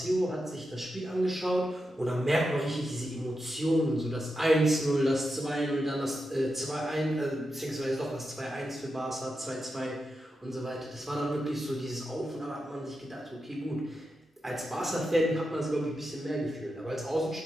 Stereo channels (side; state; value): both; normal; correlation 0.88